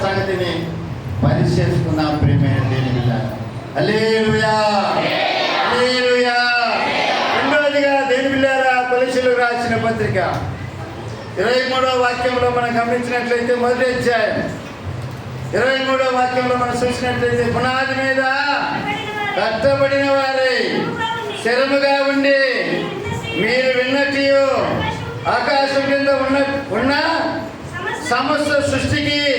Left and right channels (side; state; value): both; identical; correlation 1.00